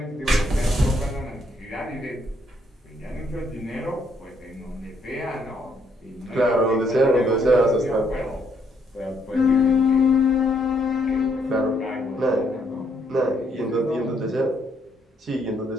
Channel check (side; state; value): both; normal; correlation 0.71